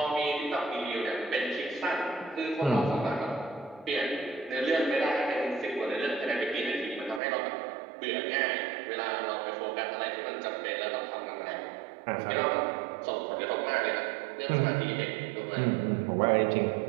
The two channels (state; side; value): drops out; left; at 7.2 s